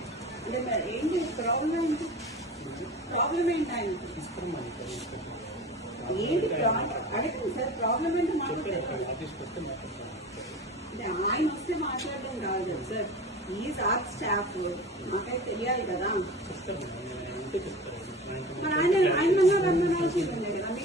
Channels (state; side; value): normal; both; correlation 0.35